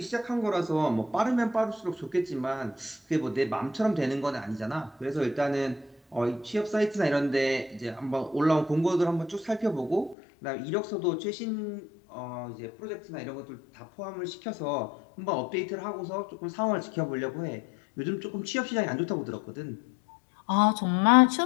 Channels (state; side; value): drops out; right; at 10.2 s